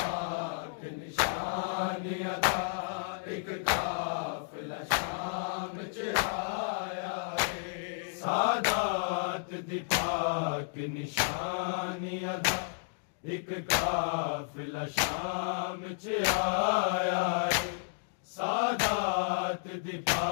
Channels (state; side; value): silent; right; digital silence